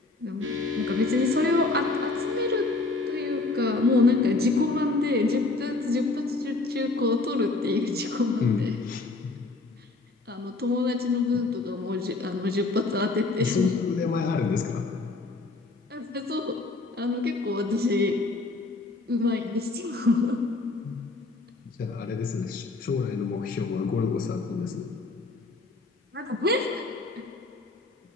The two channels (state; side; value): quieter; right; 3.4 dB